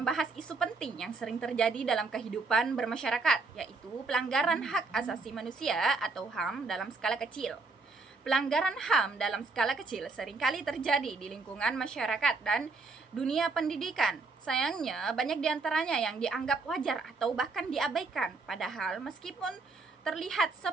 isu penting yang sering terjadi dalam kehidupan bermasyarakat, yaitu pelanggaran hak asasi manusia atau HAM dalam skala kecil. Pelanggaran HAM dalam skala kecil seringkali terjadi di lingkungan masyarakat dan dunia pendidikan. Sayangnya, banyak di antaranya yang dianggap wajar atau bahkan diabaikan. Padahal, meskipun terlihat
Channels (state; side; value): quieter; left; 3.9 dB